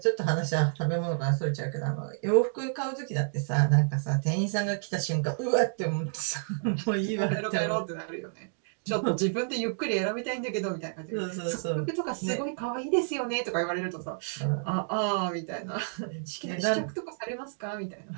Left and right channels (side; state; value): left; silent; digital silence